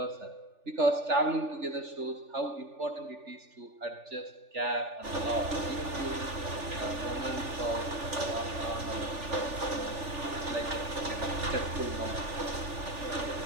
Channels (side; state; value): left; late; 3.4 ms